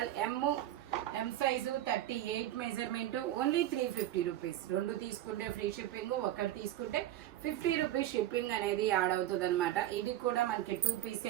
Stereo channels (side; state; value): left; quieter; 13.3 dB